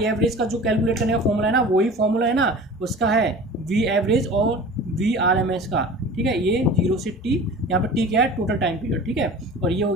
एवरेज का जो कैलकुलेट करने का फॉर्मूला है ना, वही फॉर्मूला है ना उसका है वी एवरेज और VRMS का, ठीक है। ये 0 से T, यहाँ पर T क्या है, टोटल टाइम पीरियड, ठीक है। और ये हो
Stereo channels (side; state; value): both; normal; correlation 0.39